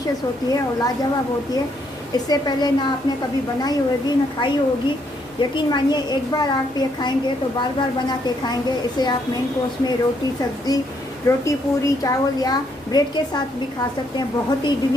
होती है और लाजवाब होती है। इससे पहले ना आपने कभी बनाई होगी ना खाई होगी। यकीन मानिए एक बार आप ये खाएंगे तो बार बार बना के खाएंगे। इसे आप मेन कोर्स में रोटी सब्ज़ी, रोटी पूरी चावल या ब्रेड के साथ भी खा सकते हैं। बहुत ही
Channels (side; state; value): both; normal; correlation 0.72